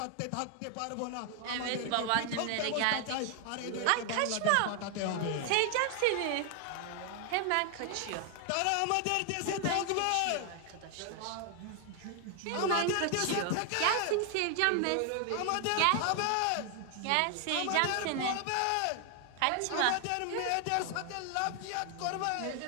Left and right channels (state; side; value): different; both; correlation 0.00